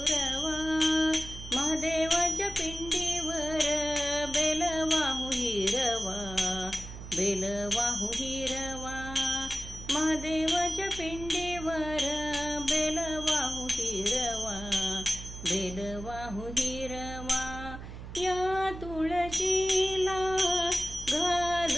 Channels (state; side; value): noise; right; hum, 11 dB below the sound